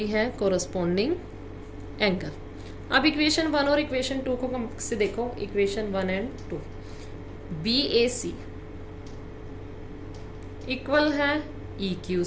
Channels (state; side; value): identical; both; correlation 1.00